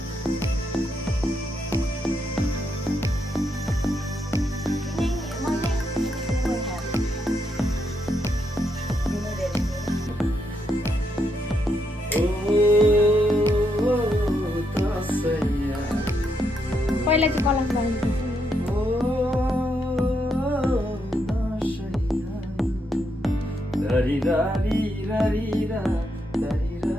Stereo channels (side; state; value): both; normal; correlation 0.79